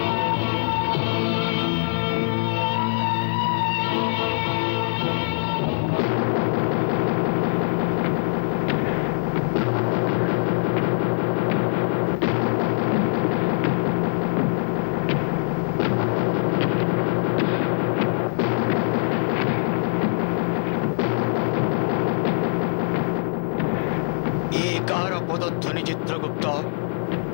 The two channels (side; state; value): right; silent; digital silence